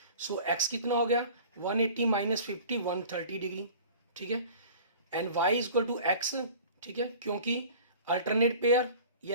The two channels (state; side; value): inverted; both; correlation -0.43